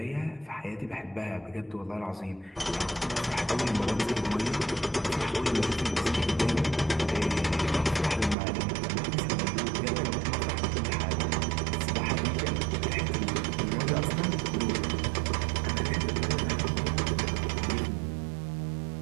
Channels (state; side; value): drops out; left; at 8.3 s